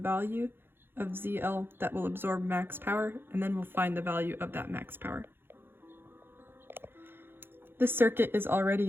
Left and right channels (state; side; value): late; left; 0.10 ms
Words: of ZL that will absorb max power, and then we'll find the value of that max power. This circuit is